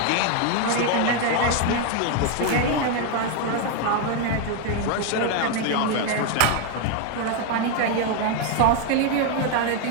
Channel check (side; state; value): both; different; correlation 0.01